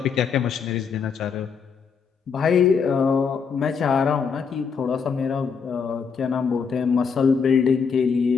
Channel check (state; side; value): quieter; right; 6.0 dB